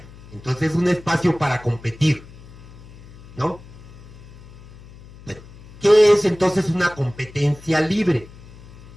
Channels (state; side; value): noise; left; hum, 19 dB below the sound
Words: entonces es un espacio para competir, ¿no? Pero, ¿qué es entonces una competencia libre?